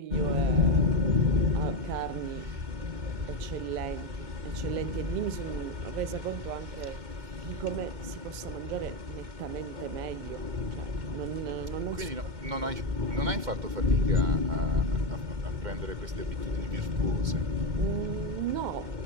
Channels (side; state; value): left; late; 2.1 ms